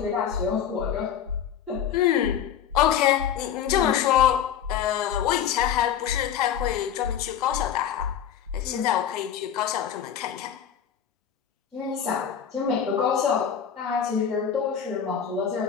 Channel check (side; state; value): right; quieter; 8.8 dB